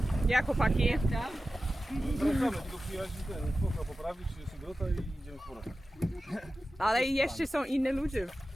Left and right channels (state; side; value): normal; both; correlation 0.94